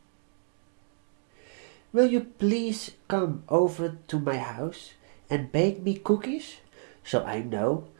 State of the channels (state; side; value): silent; left; 57 dB below the other